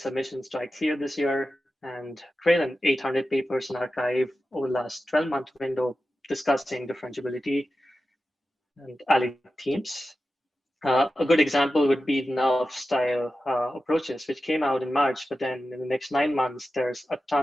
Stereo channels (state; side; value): normal; both; correlation 0.92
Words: to ICLR this year and greater than 800 papers in archive over the last 12-month window discussing differentiability and allied themes. A good example would be the NURF style approaches, which came out in March, but then in the next 9 months, there's a